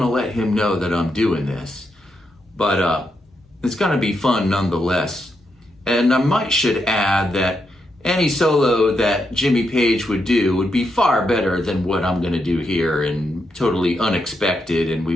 let him know that I'm doing this. But it's gonna be fun nonetheless. And I should add that any solo that Jimmy Page would do would be far better than what I'm gonna do here, and totally unexpected, and we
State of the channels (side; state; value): both; normal; correlation 0.82